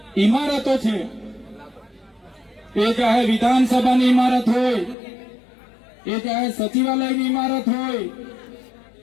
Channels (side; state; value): right; drops out; at 5.0 s